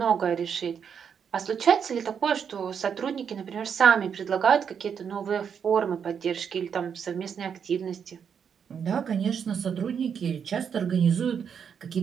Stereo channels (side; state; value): left; quieter; 7.3 dB